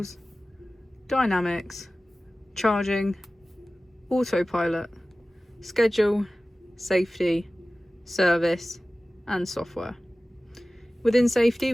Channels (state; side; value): normal; both; correlation 0.97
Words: dynamics, charging, autopilot, schedule, safety, service and software. Within safety